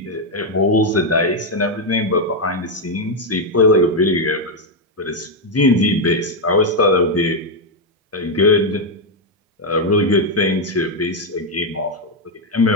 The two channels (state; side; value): normal; both; correlation 0.02